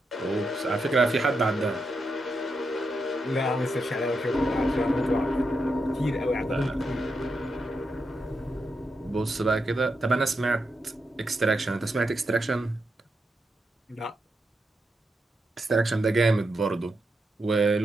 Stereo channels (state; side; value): normal; both; correlation 0.85